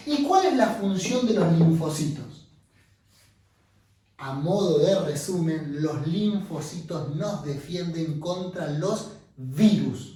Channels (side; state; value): both; identical; correlation 1.00